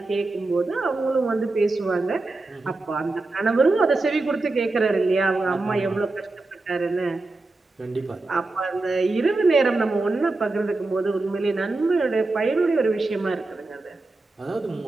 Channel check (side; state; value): left; quieter; 3.2 dB